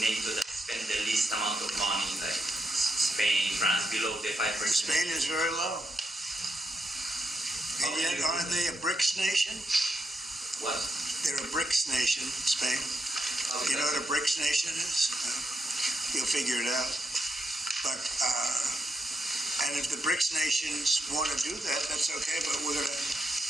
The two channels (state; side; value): normal; both; correlation 0.82